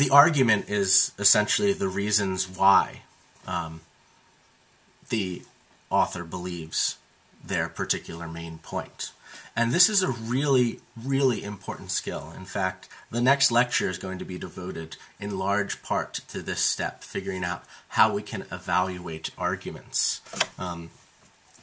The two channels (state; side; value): identical; both; correlation 1.00